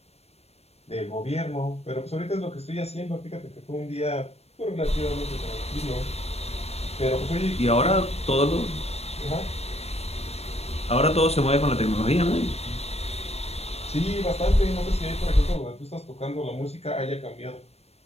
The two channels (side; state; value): right; late; 0.30 ms